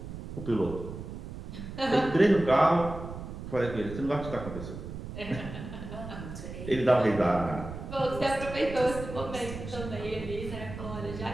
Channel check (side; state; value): right; noise; rumble, 9 dB below the sound